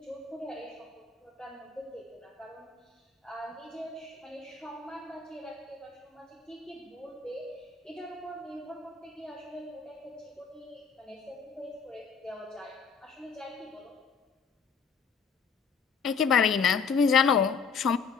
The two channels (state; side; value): quieter; right; 5.8 dB